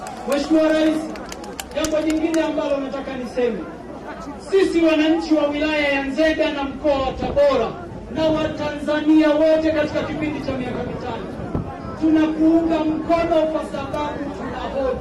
Mheshimiwa Rais, jambo jingine ambalo nataka niseme, sisi wananchi wa wilaya ya Nzega na mkoa wa Tabora na Watanzania wote katika kipindi cha miaka mitano tunakuunga mkono kwa sababu tuna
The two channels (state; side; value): identical; both; correlation 1.00